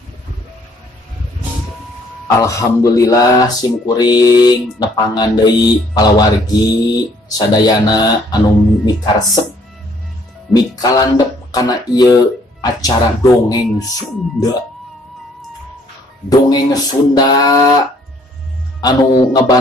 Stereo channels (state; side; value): normal; both; correlation 0.63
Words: Alhamdulillah simkuring nepangan deui palawargi sadayana anu mikaresep mikalandep kana ieu acara dongeng Sunda. Dongeng Sunda anu